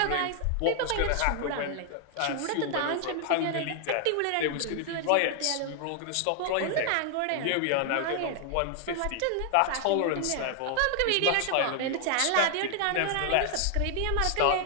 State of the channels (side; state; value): both; different; correlation 0.00